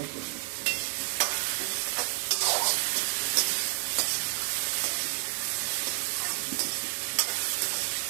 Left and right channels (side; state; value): left; silent; 56 dB below the other